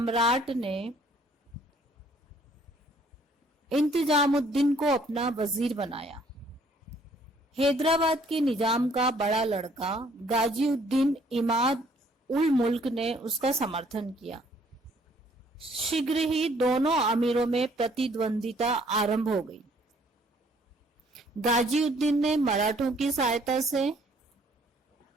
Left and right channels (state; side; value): normal; both; correlation 0.62